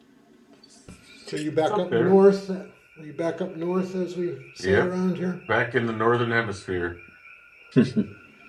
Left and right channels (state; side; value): identical; both; correlation 1.00